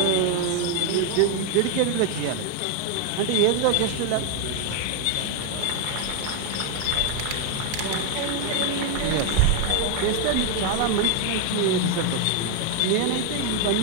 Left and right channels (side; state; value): both; different; correlation 0.01